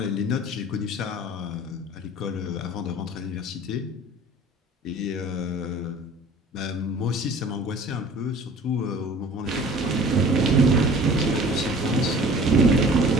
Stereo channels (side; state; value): both; normal; correlation 0.46